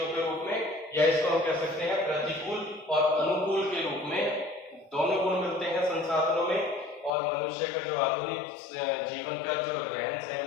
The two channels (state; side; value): drops out; right; at 7.1 s